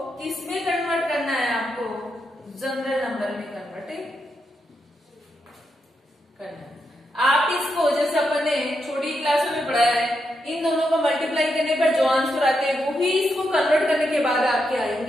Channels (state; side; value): normal; both; correlation 0.83